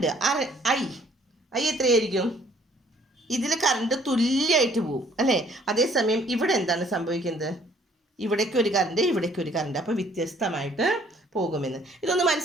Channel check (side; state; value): both; normal; correlation 0.60